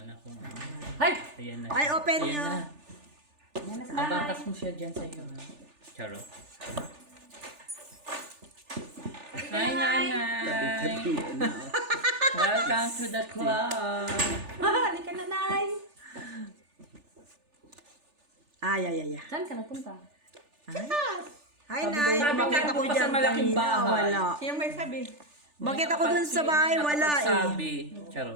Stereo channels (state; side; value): late; left; 3.4 ms